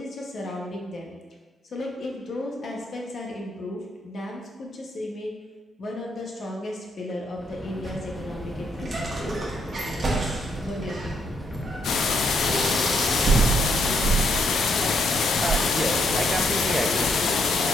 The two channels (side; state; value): both; normal; correlation 0.74